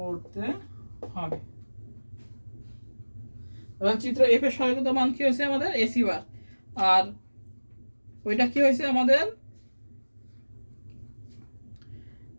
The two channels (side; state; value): both; inverted; correlation -1.00